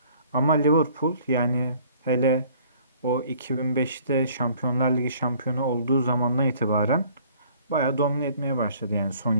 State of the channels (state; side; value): inverted; both; correlation -0.56